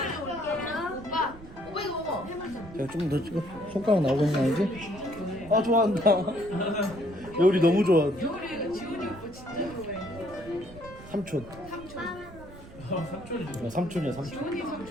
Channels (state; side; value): noise; right; rumble, 17 dB below the sound